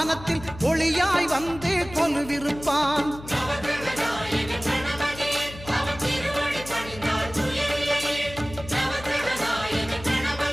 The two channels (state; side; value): noise; left; hum, 15 dB below the sound